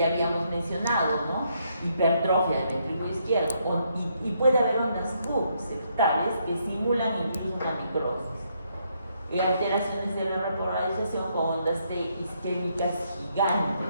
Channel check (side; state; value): both; inverted; correlation -0.74